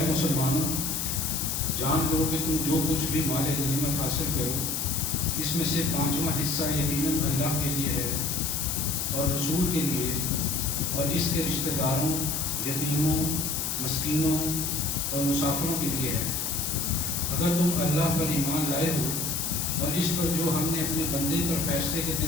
مسلمانوں، جان لو کہ تم جو کچھ بھی مال غنیمت حاصل کرو، اس میں سے 5واں حصہ یقیناً اللہ کے لیے ہے اور رسول کے لیے اور اس کے رشتہ داروں، یتیموں، مسکینوں اور مسافروں کے لیے ہے۔ اگر تم اللہ پر ایمان لائے ہو اور اس پر جو ہم نے اپنے بندے پر فیصلے کے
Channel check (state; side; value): noise; left; hiss, 1 dB below the sound